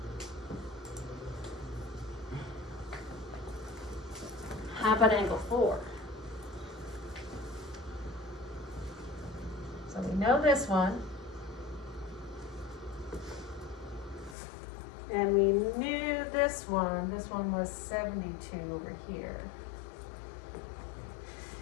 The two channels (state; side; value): drops out; right; at 14.4 s